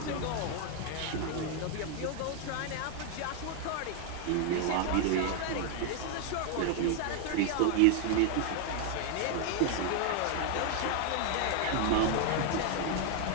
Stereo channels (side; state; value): both; different; correlation 0.00